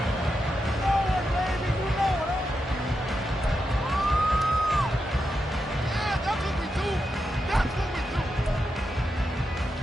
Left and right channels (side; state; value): both; normal; correlation 0.86